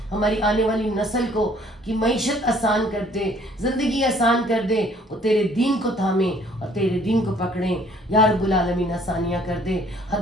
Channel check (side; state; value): both; normal; correlation 0.59